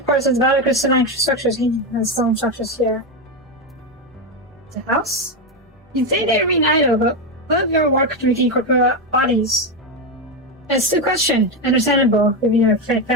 course, it's valid crystalline structures and stone structures here. The house? You say they remain idle, but what of your work to regain corporeal bodies? It's the question, understandable, given your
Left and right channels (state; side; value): normal; both; correlation 0.10